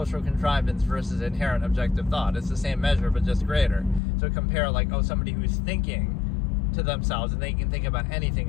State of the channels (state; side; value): drops out; right; at 4.0 s